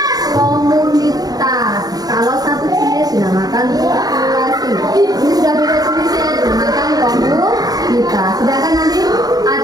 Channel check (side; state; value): left; late; 0.18 ms